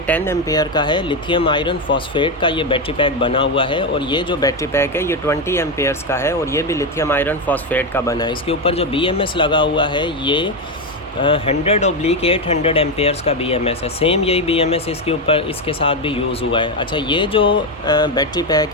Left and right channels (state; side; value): normal; both; correlation 0.10